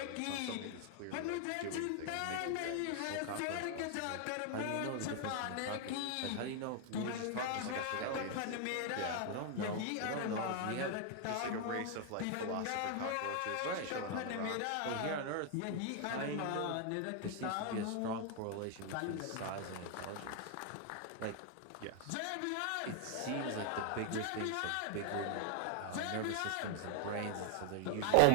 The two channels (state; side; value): different; both; correlation 0.00